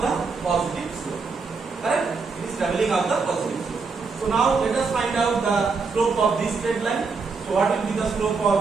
the positive slope. Correct? It is traveling up the positive slope. So now let us find out the slope of this straight line. So what will be the slope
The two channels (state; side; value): quieter; left; 4.6 dB